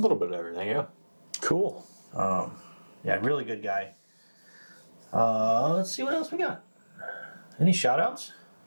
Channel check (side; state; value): both; inverted; correlation -1.00